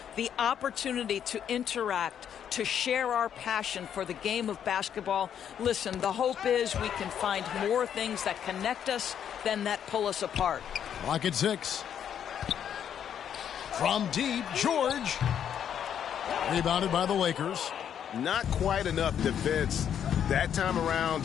the opportunity to interact, to share our passion for the game of basketball. Listen, the hope is we can find more things that connect us than that pull us apart. Clock at 6. From deep, George. Rebounded by the Lakers. Not quite enough defense that time around.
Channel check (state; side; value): quieter; right; 9.0 dB